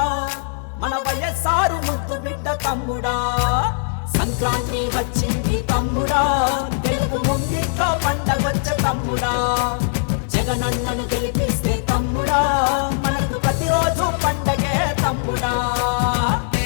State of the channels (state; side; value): silent; right; 61 dB below the other